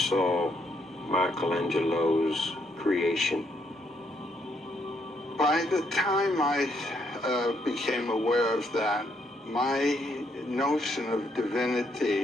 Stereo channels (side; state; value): both; normal; correlation 0.74